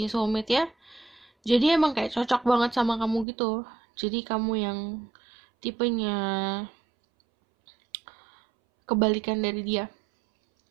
soulmate ya. Jadi emang kayak cocok banget sama kamu gitu. Jadi kamu yang tipenya kebalikan dari dia.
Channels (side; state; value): left; drops out; at 3.2 s